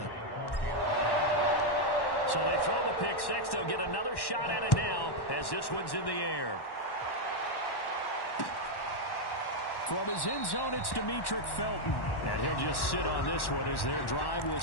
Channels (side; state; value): right; late; 1.1 ms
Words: So they throw the pick six. They'll get another shot at it now as this one's in the air. From his end zone, it's Demetric Felton. And he'll just sit on this one as their drive will